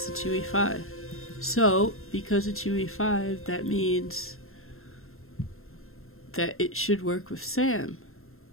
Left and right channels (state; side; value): late; right; 0.61 ms